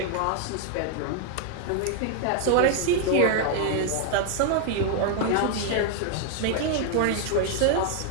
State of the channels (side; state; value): both; different; correlation 0.00